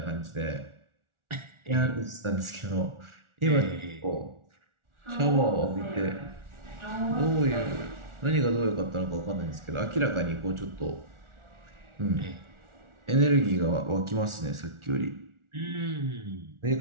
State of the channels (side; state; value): left; late; 1.4 ms